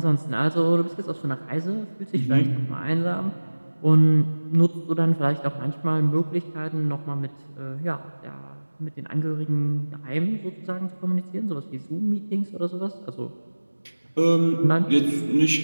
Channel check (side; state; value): both; inverted; correlation -1.00